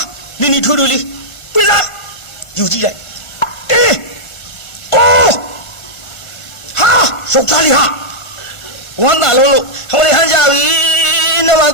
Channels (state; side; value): late; right; 1.3 ms